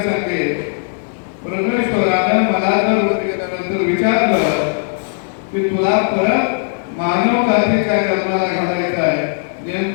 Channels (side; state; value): right; silent; digital silence